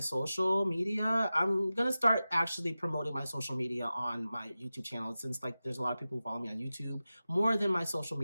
media. I'm going to start actually promoting my social media on my YouTube channel, since like there's a lot of people who follow me on YouTube more than my social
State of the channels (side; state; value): both; inverted; correlation -0.95